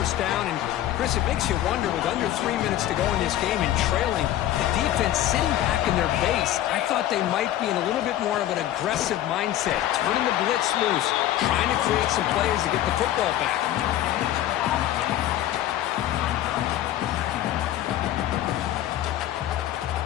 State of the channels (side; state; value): right; quieter; 12.9 dB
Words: down. And, Chris, it makes you wonder, with under 3 minutes to go in this game and trailing, the defense sitting back in their base. I thought they might be in a little bit more of an aggressive mindset, turning the blitz loose, trying to create some plays to get the football back.